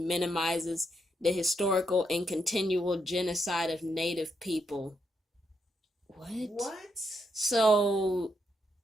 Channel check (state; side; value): normal; both; correlation 0.79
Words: minimizes the historical and continual genocide of Native people. What? So,